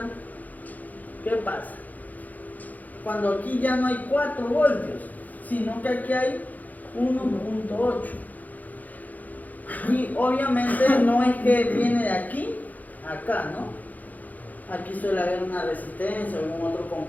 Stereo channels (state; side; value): late; right; 0.080 ms